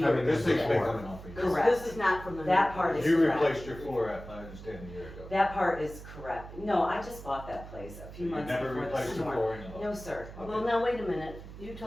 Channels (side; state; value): right; noise; hum, 14 dB below the sound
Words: years. This thing's been before. coming off for years. Correct. This is not from the. That part is You correct. replaced your floor, I understand, a year ago. That part is correct. No, I just bought that place a few You months never before the replaced your storm. flooring at all? No, sir. Well, now, wait a minute, you